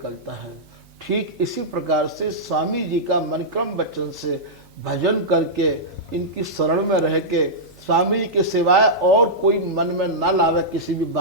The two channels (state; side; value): normal; both; correlation -0.12